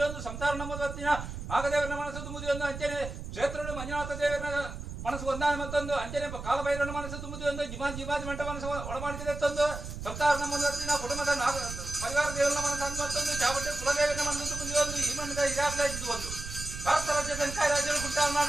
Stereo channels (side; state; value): right; noise; rumble, 8 dB below the sound